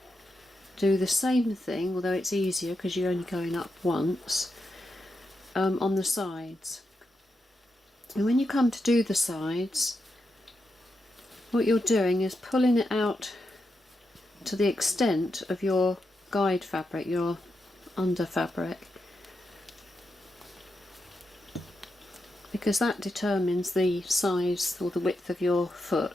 do the same thing, although it's easier because you're only going up once, on the sides. And when you come to do the sides, what you're doing is pulling it out to the extent of your guide fabric, your under fabric, because that determines the size or the width of your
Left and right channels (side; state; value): both; normal; correlation 0.86